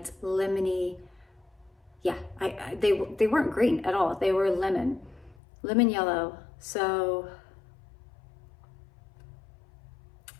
lemony. Yeah, they weren't green at all. They were lemon yellow. So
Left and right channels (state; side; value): drops out; right; at 5.4 s